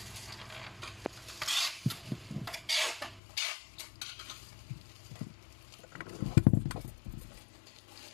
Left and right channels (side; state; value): right; drops out; at 3.2 s